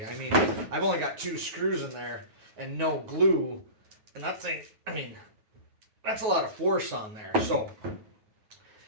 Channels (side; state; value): left; late; 9.4 ms